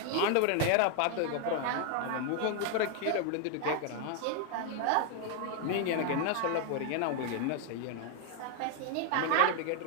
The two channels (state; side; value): different; both; correlation 0.00